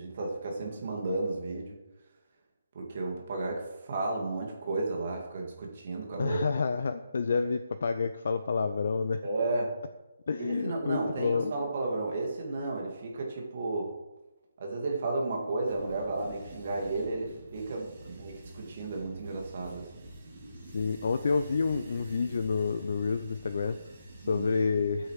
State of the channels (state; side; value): inverted; both; correlation -0.81